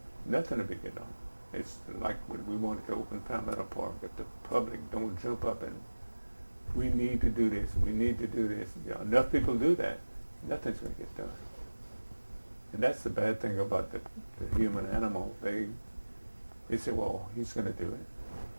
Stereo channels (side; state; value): both; inverted; correlation -1.00